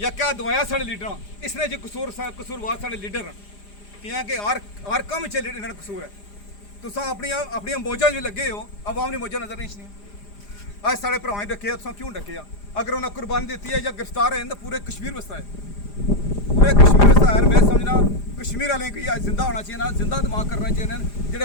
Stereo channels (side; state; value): right; late; 4.9 ms